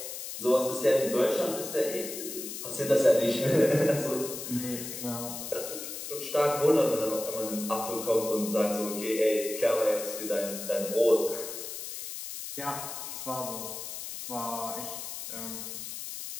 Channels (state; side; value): noise; left; hiss, 8 dB below the sound